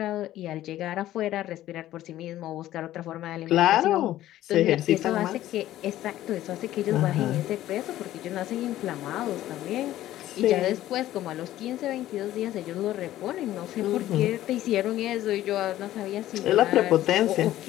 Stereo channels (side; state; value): right; quieter; 13.9 dB